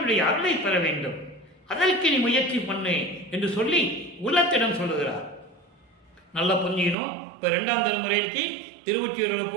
அருளை பெற வேண்டும், அதற்கு நீ முயற்சி பண்ணு என்று சொல்லி உள்ளத்திடம் சொல்லுகிறார். நல்லா புரிஞ்சுக்கணும். இப்போ 2ஆம் திருமுறைக்கு திருவொற்றியூரில்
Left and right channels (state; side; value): drops out; left; at 7.0 s